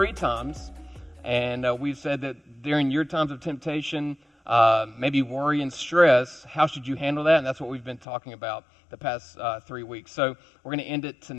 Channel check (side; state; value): right; drops out; at 8.1 s